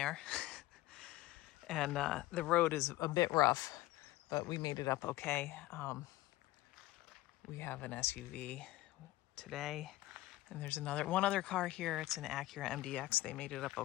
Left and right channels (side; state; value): right; quieter; 17.1 dB